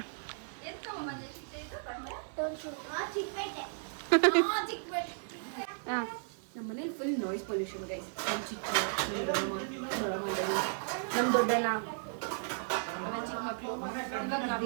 ನಮ್ಮ ಮನೇಲಿ ಫುಲ್ ನಾಯ್ಸ್ ಪೊಲ್ಯೂಷನ್ ಗೈಸ್. ನಮ್ಮ ಚಿಕ್ಕ ನಮ್ಮ ದೊಡ್ಡಣ್ಣ, ನನ್ನ ಚಿಕ್ಕ ಮಕ್ಕಳು.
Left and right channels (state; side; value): silent; left; 55 dB below the other